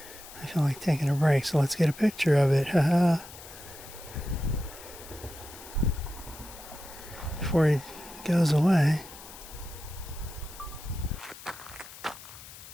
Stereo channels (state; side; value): noise; left; hiss, 16 dB below the sound